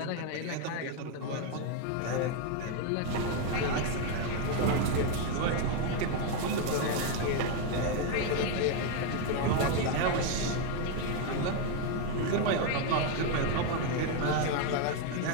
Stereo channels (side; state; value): both; different; correlation 0.01